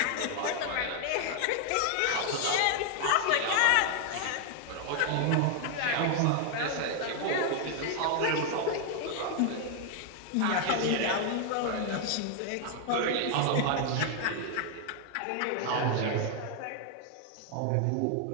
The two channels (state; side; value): different; both; correlation 0.00